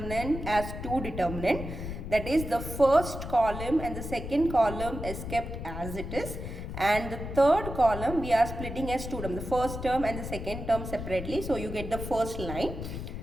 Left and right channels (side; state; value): left; noise; rumble, 7 dB below the sound